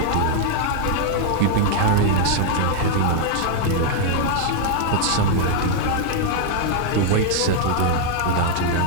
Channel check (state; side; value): different; both; correlation 0.00